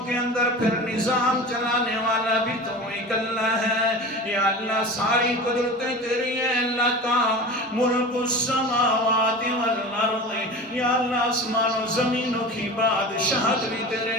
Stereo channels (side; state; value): both; normal; correlation 0.33